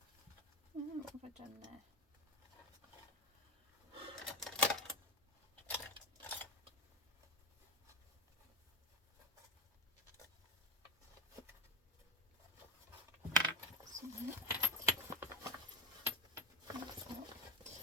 what have I done there?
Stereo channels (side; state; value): both; normal; correlation 0.14